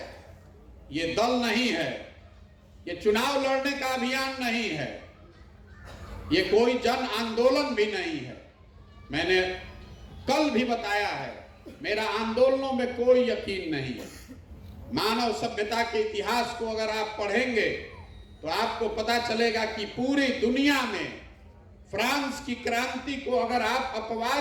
ये दल नहीं है, ये चुनाव लड़ने का अभियान नहीं है, ये कोई जन आंदोलन भी नहीं है। मैंने कल भी बताया है, मेरा आंदोलनों में कोई यकीन नहीं है। मानव सभ्यता के इतिहास को अगर आप पढ़ेंगे तो आपको पता चलेगा कि पूरी दुनिया में फ्रांस की क्रांति को अगर आप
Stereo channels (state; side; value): identical; both; correlation 1.00